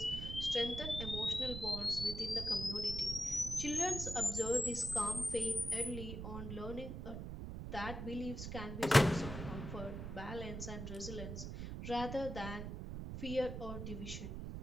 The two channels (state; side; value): noise; right; rumble, 6 dB below the sound